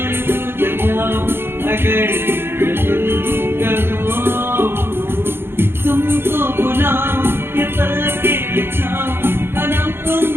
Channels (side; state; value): left; late; 0.11 ms